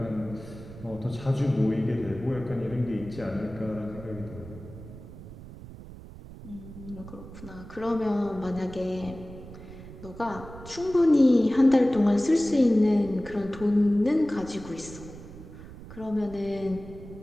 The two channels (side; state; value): right; noise; rumble, 15 dB below the sound